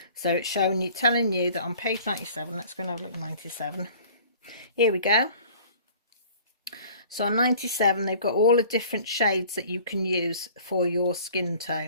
So it's showing you, telling you that on page 97, let's go and have a look at 97. Here we go. So on 97, they've got all the different shades that you can use for your skin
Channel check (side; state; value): both; inverted; correlation -0.49